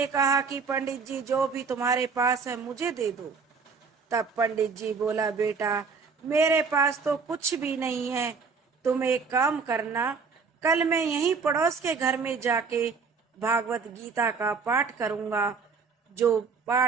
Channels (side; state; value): left; quieter; 5.2 dB